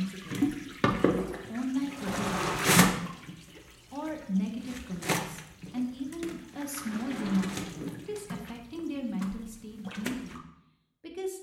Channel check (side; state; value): both; identical; correlation 1.00